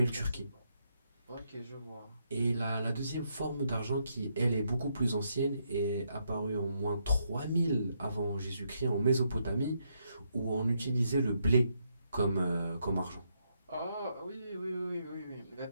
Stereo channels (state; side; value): inverted; both; correlation -0.77